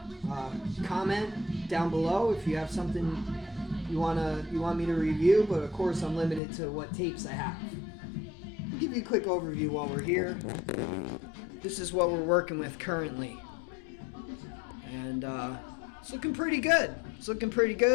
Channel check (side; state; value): right; drops out; at 6.4 s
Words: Comment down below if you have something you want me to review, but of course I'm limited to what tapes I have. I'll give you a quick overview while we're here. This is what we're working with currently. And it's looking pretty good.